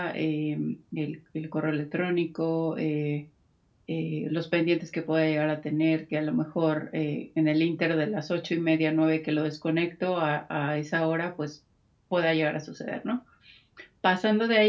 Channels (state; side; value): identical; both; correlation 1.00